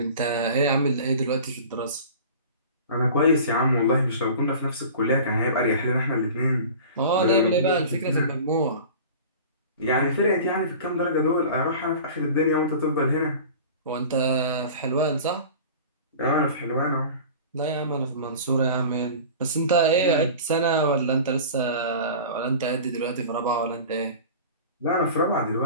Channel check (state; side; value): inverted; both; correlation -0.39